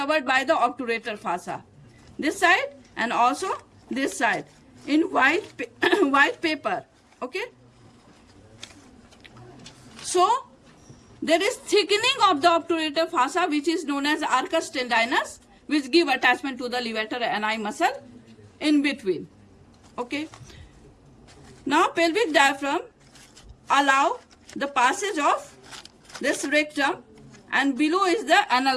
by the obturator fossa. This side and also this side in white paper. Okay, so there is thickening of the obturator fossa, which is known as arcus tendinus, which give attachment to the levator ani muscle in between. Okay, now pelvic diaphragm allow the passage of this rectum, and below is the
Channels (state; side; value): identical; both; correlation 1.00